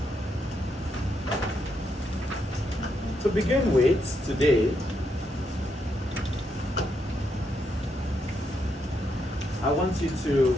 To begin with, today, I want you to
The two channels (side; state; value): both; normal; correlation 0.79